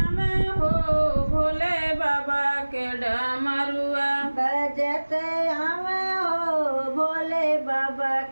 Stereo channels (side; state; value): both; inverted; correlation -1.00